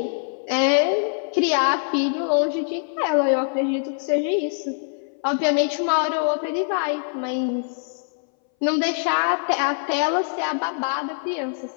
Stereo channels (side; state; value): right; silent; 61 dB below the other